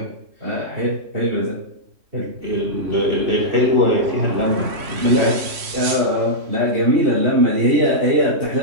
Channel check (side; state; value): left; late; 3.1 ms